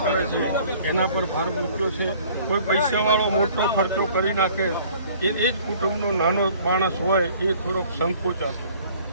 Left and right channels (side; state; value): both; inverted; correlation -0.54